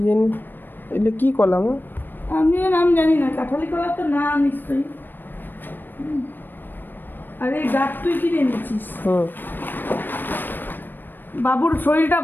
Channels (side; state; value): right; late; 0.093 ms